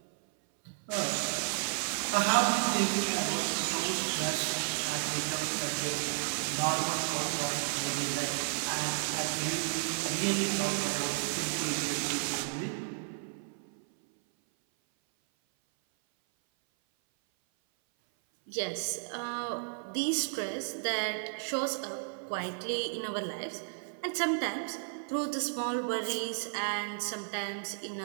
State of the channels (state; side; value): silent; left; 56 dB below the other